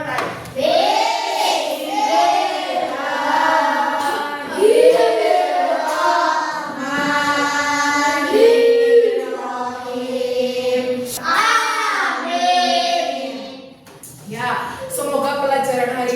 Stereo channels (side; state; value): both; identical; correlation 1.00